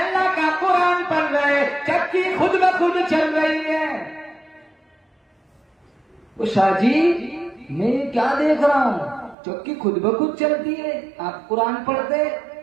का कुरान पढ़ रहे, चक्की खुद ब खुद चल रही है। वो शाह जी, मैं क्या देख रहा हूँ, चक्की खुद ब खुद चलती है, आप कुरान पढ़ते,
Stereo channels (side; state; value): left; drops out; at 9.3 s